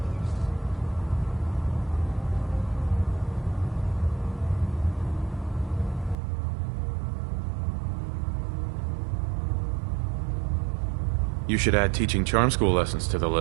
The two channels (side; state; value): left; drops out; at 6.2 s